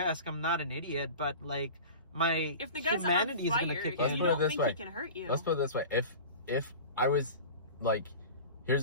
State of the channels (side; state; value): both; inverted; correlation -0.35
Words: I'm not an idiot, but if the guy's humanity on fire, is gonna kick you in. don't think he can hurt you. Let's put it this way: if I was